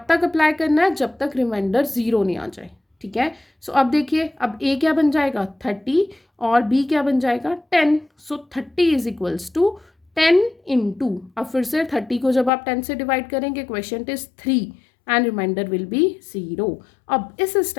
तक अप्लाई करना है जब तक रिमाइंडर 0 नहीं आ जाए, ठीक है। सो अब देखिए, अब A क्या बन जाएगा 30 और B क्या बन जाएगा 10। सो 30 इज इक्वल्स टू 10 इंटू, अब फिर से 30 को जब आप 10 से डिवाइड करेंगे quotient is 3 and remainder will be 0। अब इस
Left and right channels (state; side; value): drops out; right; at 12.5 s